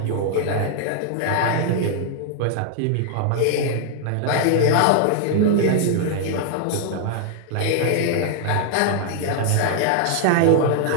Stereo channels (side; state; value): both; different; correlation 0.00